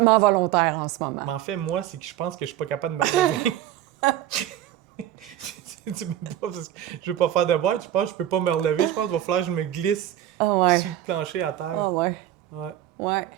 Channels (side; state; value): left; quieter; 12.2 dB